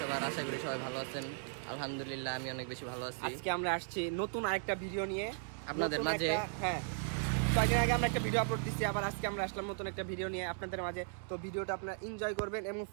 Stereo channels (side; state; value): left; silent; digital silence